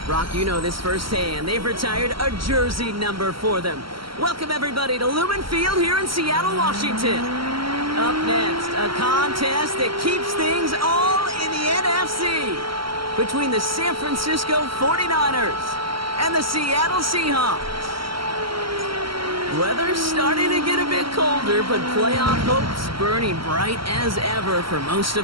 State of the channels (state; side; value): late; left; 0.74 ms